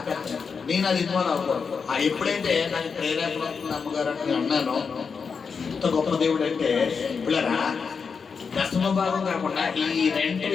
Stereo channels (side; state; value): right; quieter; 5.6 dB